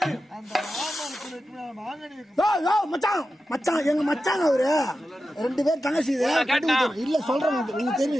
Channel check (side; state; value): both; normal; correlation 0.92